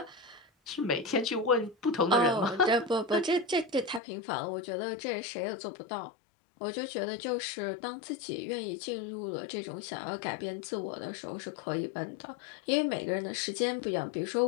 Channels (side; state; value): right; drops out; at 4.0 s